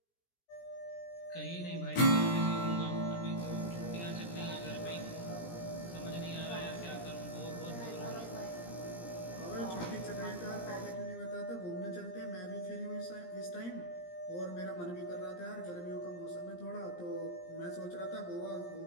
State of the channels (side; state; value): right; late; 17 ms